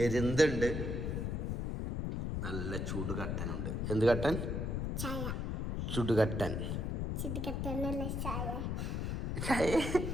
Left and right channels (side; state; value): left; noise; rumble, 1 dB below the sound